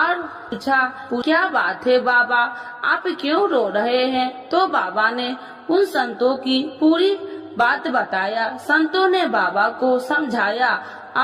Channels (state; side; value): identical; both; correlation 1.00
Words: पूछा, क्या बात है बाबा, आप क्यों रो रहे हैं। तो बाबा ने उन संतों की पूरी बात बताया। संतों ने बाबा को समझाया